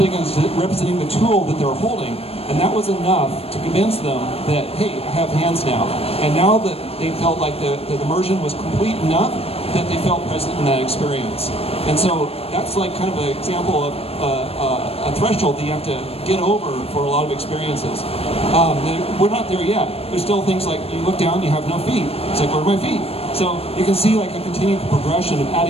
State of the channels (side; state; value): right; late; 0.28 ms